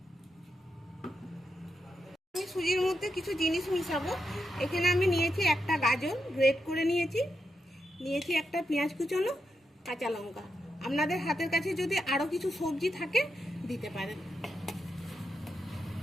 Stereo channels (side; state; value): both; normal; correlation 0.85